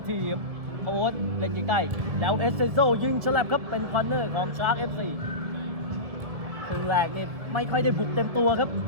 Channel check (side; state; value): left; late; 1.6 ms